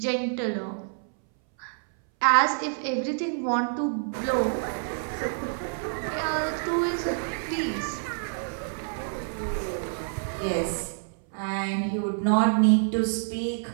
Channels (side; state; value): left; silent; 60 dB below the other